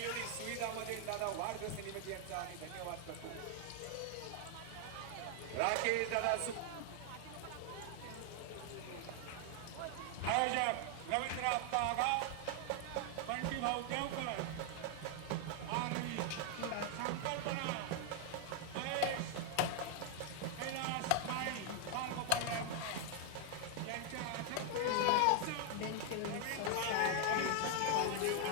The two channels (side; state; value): both; different; correlation 0.00